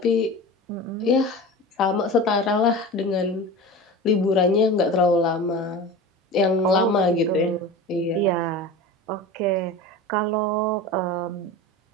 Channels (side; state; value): both; normal; correlation 0.32